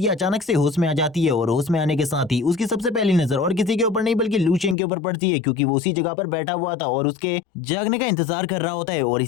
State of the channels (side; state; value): right; drops out; at 4.8 s